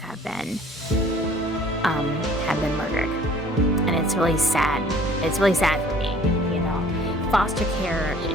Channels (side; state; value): both; normal; correlation 0.53